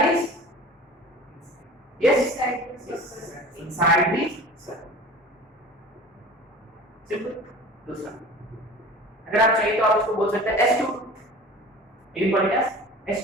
inside the circle। Simple. दूसरा अगर आप चाहिए तो आप इसको बोल सकते हैं S22, ये पॉइंट है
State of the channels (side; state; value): both; normal; correlation 0.40